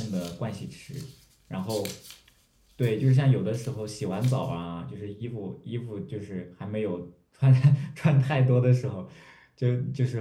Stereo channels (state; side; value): identical; both; correlation 1.00